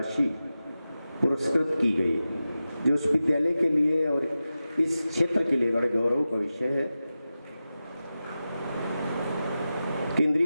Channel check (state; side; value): inverted; both; correlation -0.93